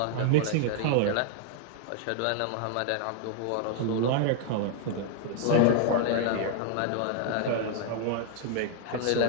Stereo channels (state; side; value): different; both; correlation 0.00